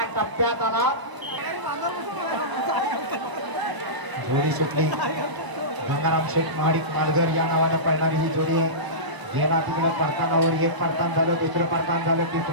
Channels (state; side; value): late; left; 1.0 ms